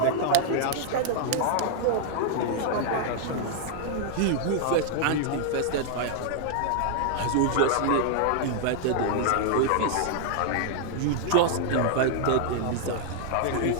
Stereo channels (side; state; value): both; different; correlation -0.01